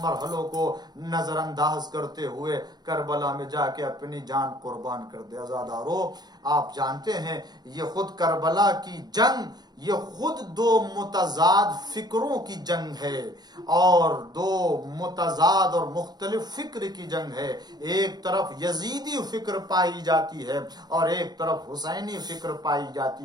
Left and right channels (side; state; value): left; late; 0.20 ms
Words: مرحلوں کو نظر انداز کرتے ہوئے کربلا میں جا کے اپنی جان قربان کر دے؟ عزادارو، آپ جانتے ہیں یہ خود کربلا کی جنگ یہ خود دو متضاد فکروں کی جنگ ہے اور دو متضاد اور مختلف فکر کی جنگ ہے. ایک طرف یزیدی فکر پائی جاتی ہے اور ایک طرف حسینی فکر پائی